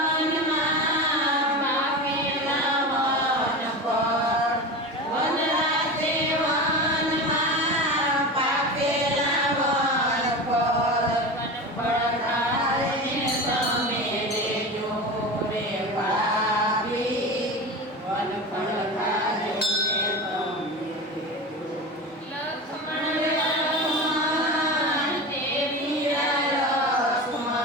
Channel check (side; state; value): both; normal; correlation 0.27